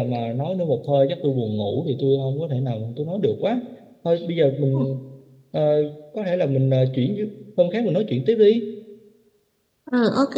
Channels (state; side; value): identical; both; correlation 1.00